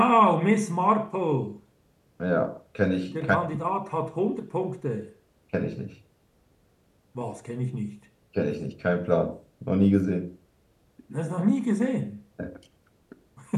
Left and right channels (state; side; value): identical; both; correlation 1.00